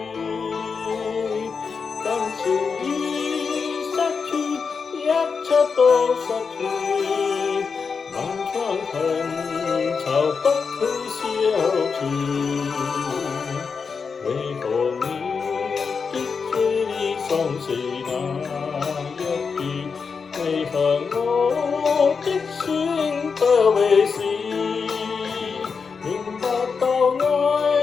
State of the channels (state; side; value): quieter; right; 5.4 dB